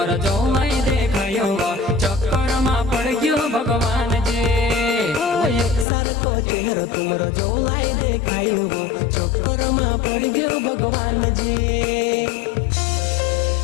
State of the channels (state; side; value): drops out; right; at 5.9 s